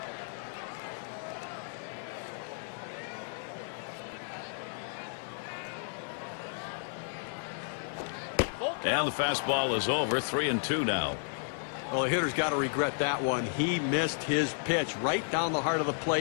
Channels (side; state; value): right; silent; 56 dB below the other